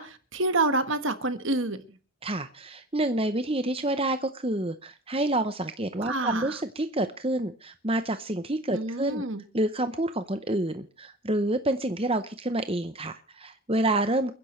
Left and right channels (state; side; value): normal; both; correlation 0.36